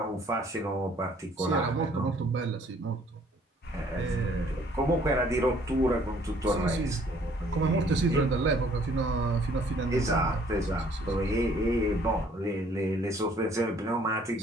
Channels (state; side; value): normal; both; correlation 0.60